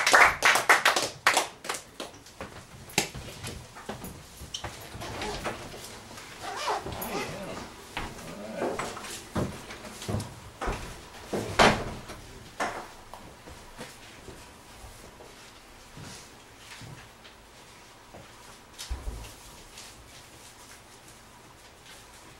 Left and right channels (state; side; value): identical; both; correlation 1.00